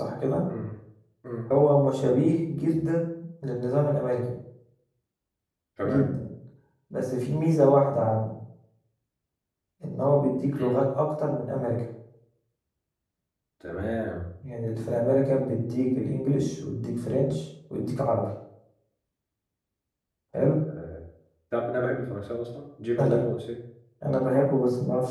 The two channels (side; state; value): both; identical; correlation 1.00